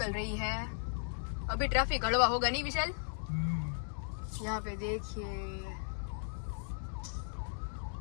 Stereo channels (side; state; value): right; silent; digital silence